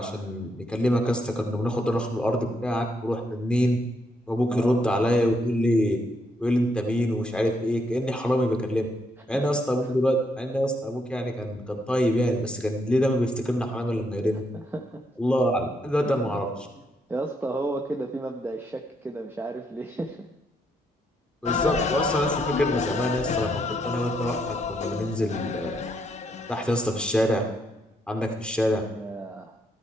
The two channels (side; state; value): both; normal; correlation 0.76